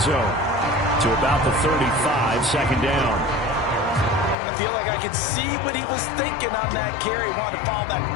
zone to about the 35, 2nd down. I feel like I could see what he was thinking on that carry. Wanted to follow that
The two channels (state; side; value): drops out; right; at 4.4 s